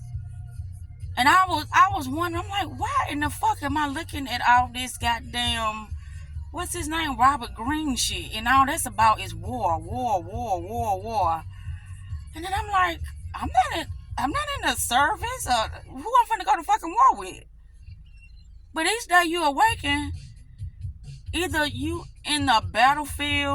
And I was wondering, I'm like, why in the fuck am I looking at all this goddamn, what's his name, Robert Greene shit, and all that's about is war. And then I'm like, I'm not in the service, or who I'm finna go to fucking war with. But each day you awaken, either you in the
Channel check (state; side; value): identical; both; correlation 1.00